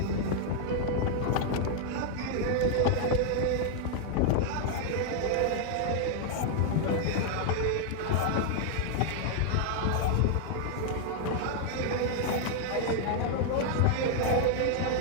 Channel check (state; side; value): different; both; correlation 0.00